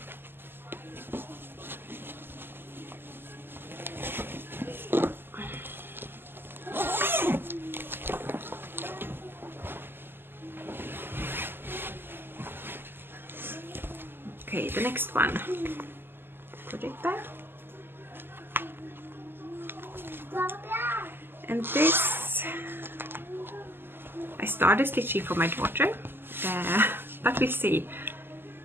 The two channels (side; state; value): left; late; 0.10 ms